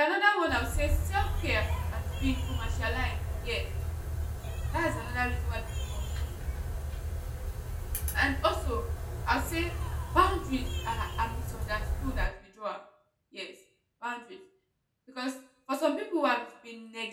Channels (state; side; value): identical; both; correlation 1.00